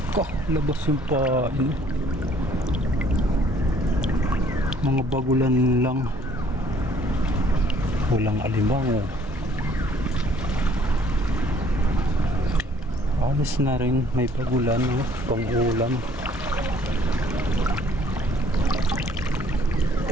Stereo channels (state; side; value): normal; both; correlation 0.60